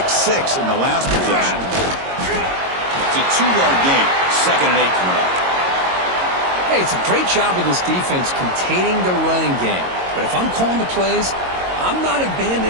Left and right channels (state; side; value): late; left; 22 ms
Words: 6 in the last possession. It's a 2-yard gain. 2nd and 8 coming up. Hey, it's a great job of this defense containing the running game. But if I'm calling the plays, I'm not